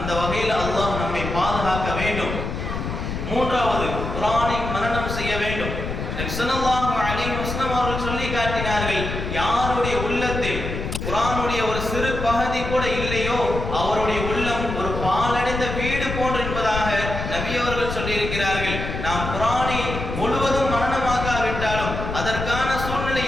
வகையில் அல்லாஹ் நம்மை பாதுகாக்க வேண்டும். மூன்றாவது, குர்ஆனை மனனம் செய்ய வேண்டும். ஸல்லல்லாஹு அலைஹி வஸல்லம் அவர்கள் சொல்லி காட்டினார்கள், யாருடைய உள்ளத்தில் குர்ஆனுடைய ஒரு சிறு பகுதி கூட இல்லையோ அவருடைய உள்ளம் ஒரு பாலடைந்த வீடு போன்று என்பதாக நபி அவர்கள் சொல்லி இருக்கிறார்கள். நாம் குர்ஆனை முழுவதும் மனனமாக்காவிட்டாலும், அதற்கான சூழ்நிலை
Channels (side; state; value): left; noise; rumble, 5 dB below the sound